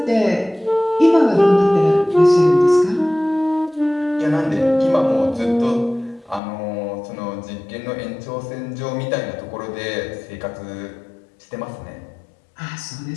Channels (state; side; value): drops out; right; at 6.4 s